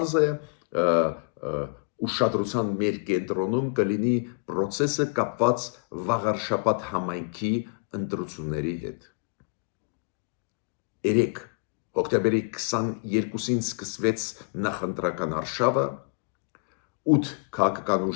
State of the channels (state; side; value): quieter; right; 35.8 dB